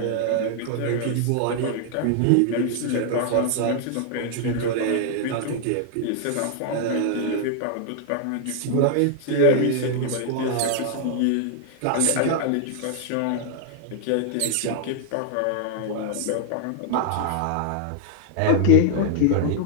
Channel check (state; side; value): different; both; correlation 0.00